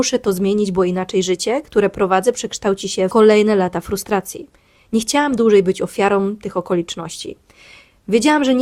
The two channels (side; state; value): both; identical; correlation 1.00